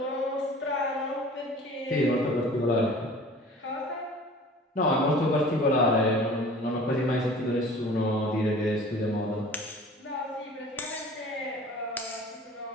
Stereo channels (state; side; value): normal; both; correlation 0.45